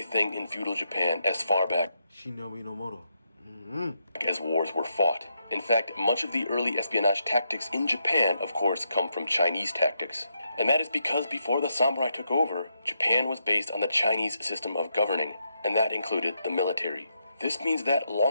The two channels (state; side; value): inverted; both; correlation -0.82